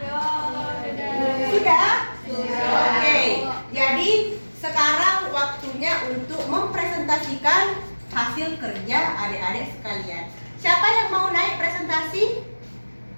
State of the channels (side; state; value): both; inverted; correlation -1.00